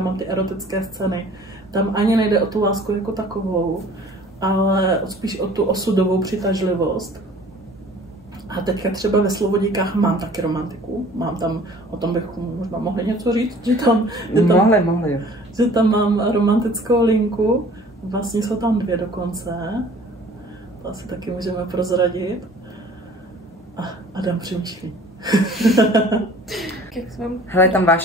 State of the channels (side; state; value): both; normal; correlation 0.50